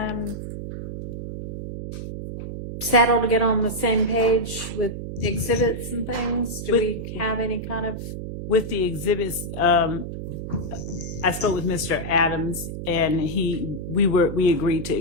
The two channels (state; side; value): noise; right; hum, 7 dB below the sound